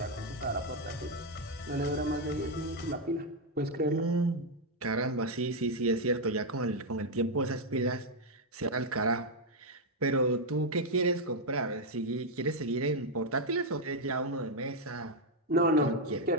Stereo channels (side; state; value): both; normal; correlation 0.01